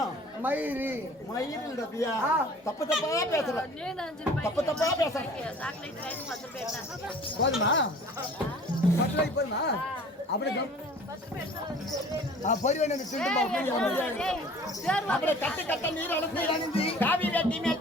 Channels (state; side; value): normal; both; correlation 0.47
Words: மயிர் ரபியா தப்பு தப்பா பேசுற போதுமா போதுமா அப்படி அப்படியே கட்டு கட்ட நீர் அழுந்து காவி வேட்டி மேல்